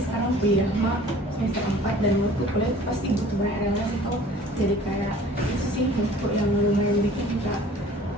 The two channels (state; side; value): normal; both; correlation 0.49